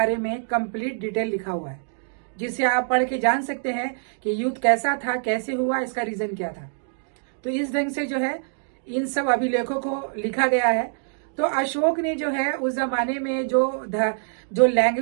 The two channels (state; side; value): silent; left; digital silence